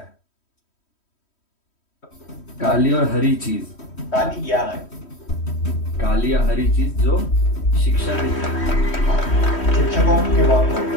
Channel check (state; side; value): late; right; 3.1 ms